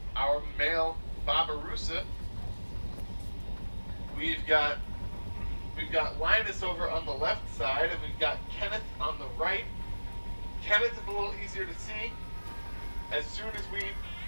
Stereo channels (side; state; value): both; inverted; correlation -1.00